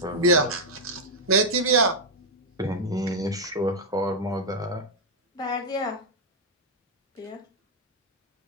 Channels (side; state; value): both; normal; correlation -0.03